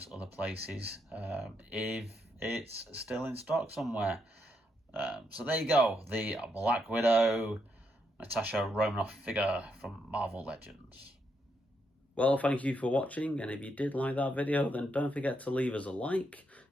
other places if it's still in stock somewhere. So there you go, the Black Widow Natasha Romanoff figure from Marvel Legends. Well, thank you for watching, and if you did like that video, then don't forget to leave us a like.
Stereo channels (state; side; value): normal; both; correlation 0.79